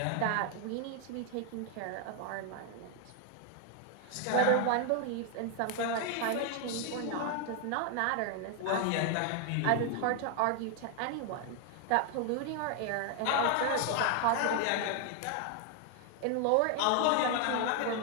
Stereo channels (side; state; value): both; different; correlation 0.00